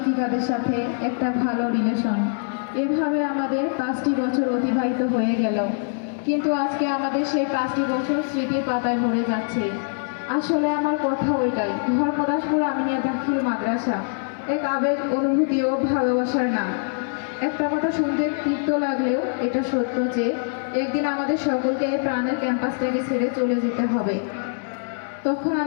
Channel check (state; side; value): silent; right; 63 dB below the other